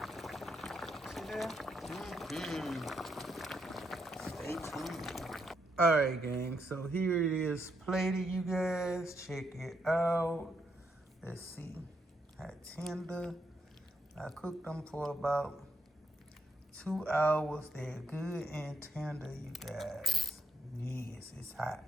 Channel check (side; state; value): both; normal; correlation 0.78